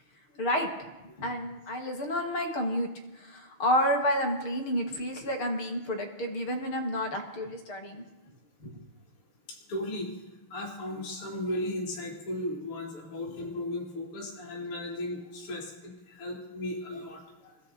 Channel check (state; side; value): late; right; 6.5 ms